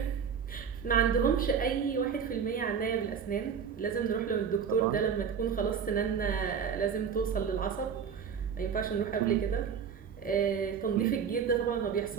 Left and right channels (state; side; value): quieter; left; 7.0 dB